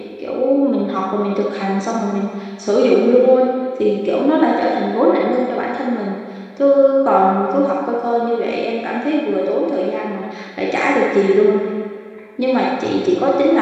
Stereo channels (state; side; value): identical; both; correlation 1.00